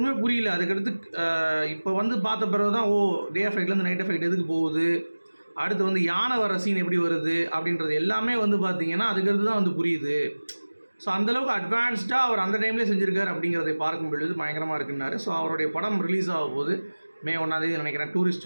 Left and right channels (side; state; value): both; inverted; correlation -1.00